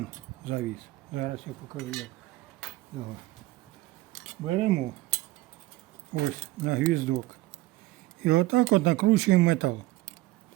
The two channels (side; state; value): left; quieter; 18.3 dB